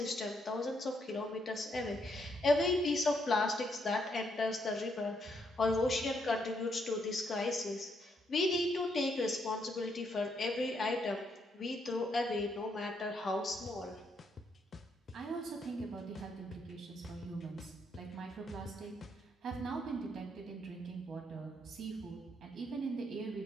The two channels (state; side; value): normal; both; correlation 0.75